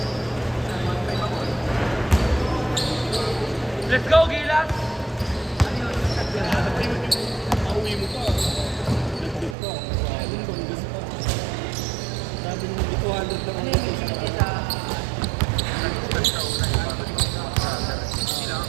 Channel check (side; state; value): left; drops out; at 9.6 s